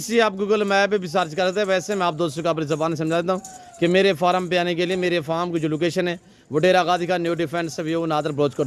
सी आप गूगल मैप पे भी सर्च करते हैं। वैसे मैं आप दोस्तों को अपनी ज़बान समझा देता हूँ कि मेरे फार्म पे आने के लिए मेरे फार्म की जो लोकेशन है वो डेरा गाजी का न्यू डिफेंस व्यू नादर ब्रोचकोट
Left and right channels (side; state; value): both; identical; correlation 1.00